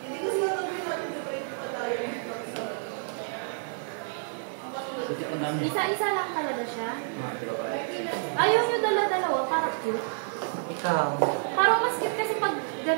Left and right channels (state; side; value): silent; left; digital silence